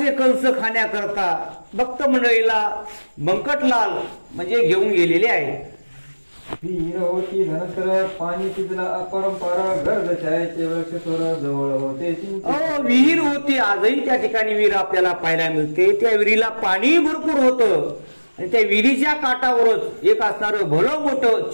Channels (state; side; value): inverted; both; correlation -1.00